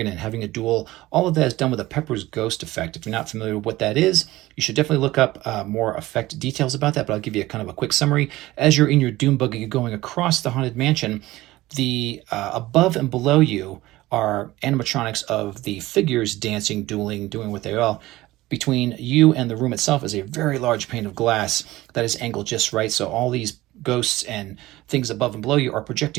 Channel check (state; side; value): quieter; left; 17.8 dB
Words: and having a duel, all of that is done with a Pepper's Ghost effect. If you're not familiar with what that is, you should definitely look up more effect details about that, but I'll give you a kind of a quick summary. As you're in your Doom Buggy going across the Haunted Mansion, the above and below you are animatronics of the figures dancing, dueling, doing what they are. Between you and the room itself is a very large pane of glass that is angled just right. So all these ghosts and things above and below you are